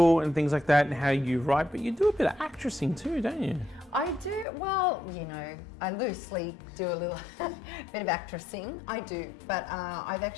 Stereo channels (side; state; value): right; drops out; at 4.5 s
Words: and things like that and how you write, but you do a bit of actressing too, don't you? I do, well, I loosely do a little bit of actressing. I do, but I've